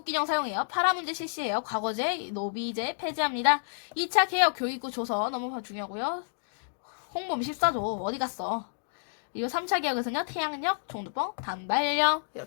사용해요. 파라문제 실시해요. 과거제, 노비제 폐지합니다. 2차 개혁 교육부 조서 너무 중요하고요. 홍범 14조 어디 갔어? 그리고 3차 개혁에서는요, 태양력, 종두뻥, 단발령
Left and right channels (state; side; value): silent; right; digital silence